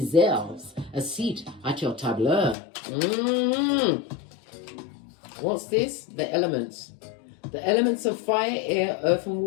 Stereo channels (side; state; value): right; drops out; at 2.6 s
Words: a seat at your tableau. What's this? The elements. The elements of fire, air, earth, and